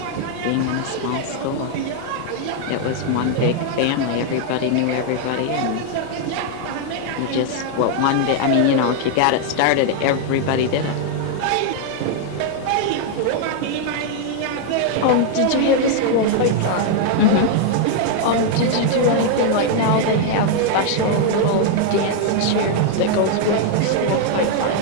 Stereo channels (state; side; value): different; both; correlation 0.00